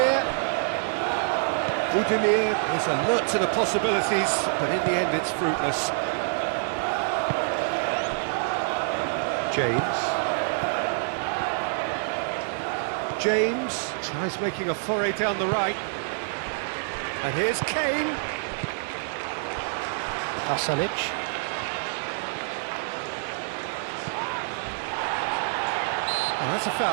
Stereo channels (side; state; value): left; silent; digital silence